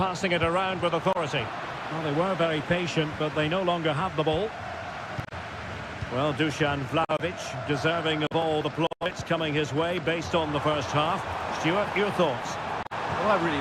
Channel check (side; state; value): both; identical; correlation 1.00